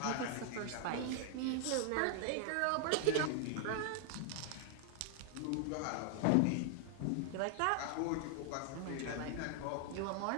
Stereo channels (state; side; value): different; both; correlation 0.00